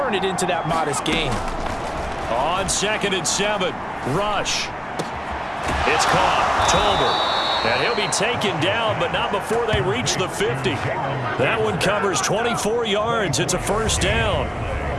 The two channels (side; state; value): both; identical; correlation 1.00